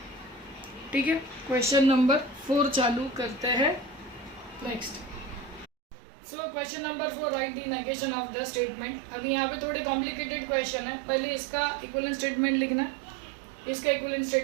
ठीक है, क्वेश्चन नंबर 4 चालू करते हैं. Next. So question number 4, right the negation of the statement. अभी यहाँ पे थोड़े कॉम्प्लिकेटेड क्वेश्चन है. पहले इसका इक्विवेलेंट स्टेटमेंट लिखना है, इसका इक्विवेलेंट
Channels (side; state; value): left; drops out; at 5.7 s